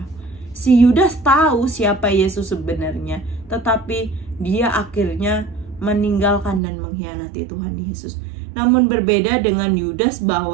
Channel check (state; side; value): drops out; left; at 6.6 s